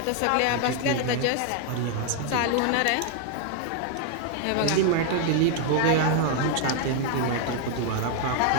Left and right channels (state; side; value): different; both; correlation 0.00